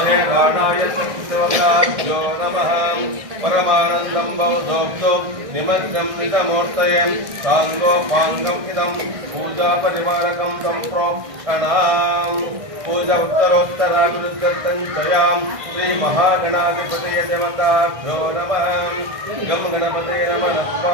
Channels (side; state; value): left; late; 1.6 ms